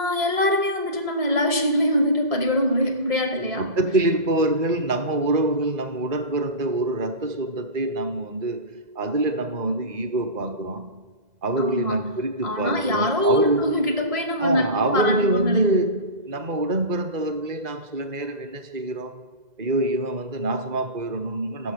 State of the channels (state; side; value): late; left; 2.0 ms